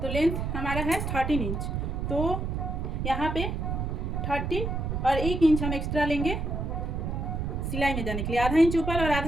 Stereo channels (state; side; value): noise; right; rumble, 2 dB below the sound